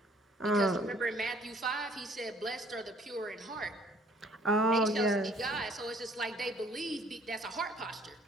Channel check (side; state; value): both; normal; correlation 0.59